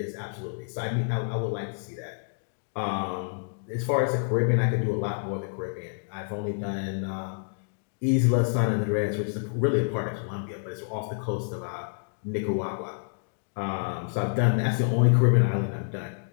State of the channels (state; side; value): silent; right; digital silence